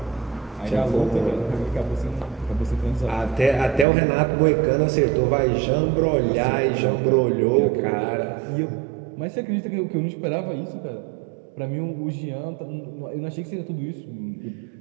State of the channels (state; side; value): drops out; left; at 3.9 s